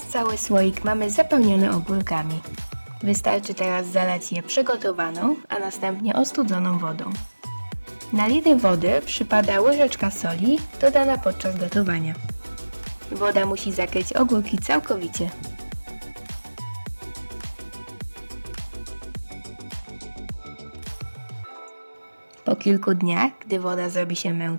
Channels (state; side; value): inverted; both; correlation -1.00